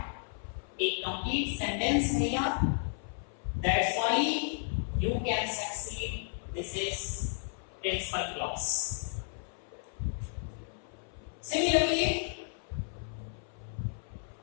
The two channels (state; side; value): silent; right; 56 dB below the other